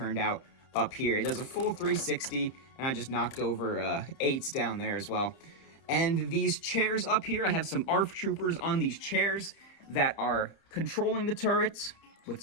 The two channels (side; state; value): right; late; 31 ms